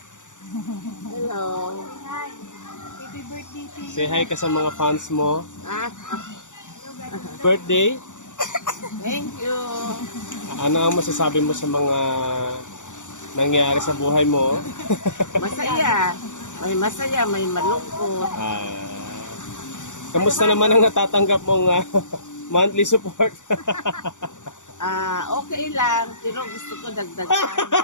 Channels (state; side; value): late; right; 0.86 ms